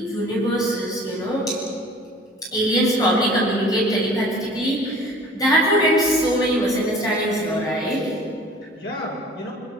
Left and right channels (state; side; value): normal; both; correlation 0.47